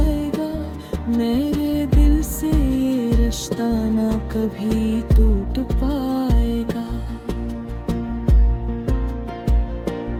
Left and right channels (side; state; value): both; identical; correlation 1.00